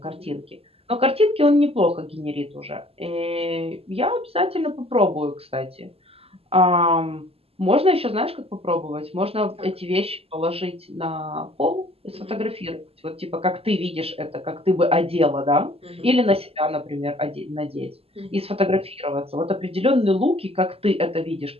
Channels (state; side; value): late; left; 0.28 ms